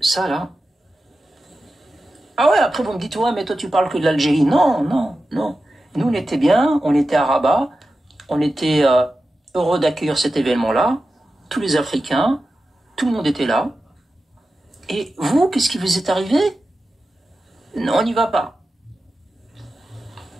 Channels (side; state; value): both; normal; correlation 0.92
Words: ça, là... Ah ouais, après vous me dites, ouais, mais toi tu parles que de l'Algérie. Non. Nous, on était bien, on était à Rabat, on était heureux d'accueillir cet événement-là. Tous les Africains, tout le monde était là. Et vous, qu'est-ce qui vous est arrivé? Non, on n'y va pas.